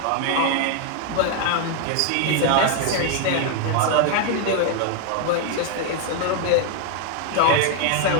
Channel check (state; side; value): different; both; correlation 0.00